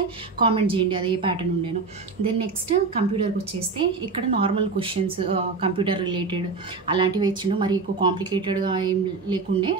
కామెంట్ చేయండి అది ఏ ప్యాటర్న్ ఉండేను. దెన్ నెక్స్ట్ కంప్యూటర్కి వచ్చేస్తే ఇక్కడ నార్మల్ క్వశ్చన్స్ కంప్యూటర్ రిలేటెడ్ అలాంటివి ఇచ్చిండు. మరి ఎక్కువ కాంప్లికేటెడ్గా ఏం లేకుండే,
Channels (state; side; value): quieter; left; 4.3 dB